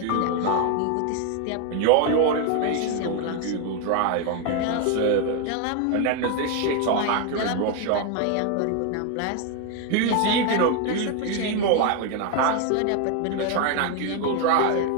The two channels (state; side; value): different; both; correlation 0.01